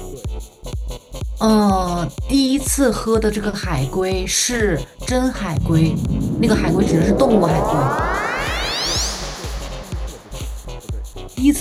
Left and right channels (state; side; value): identical; both; correlation 1.00